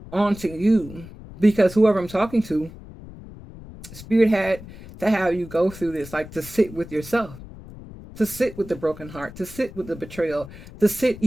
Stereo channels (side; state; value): left; noise; rumble, 16 dB below the sound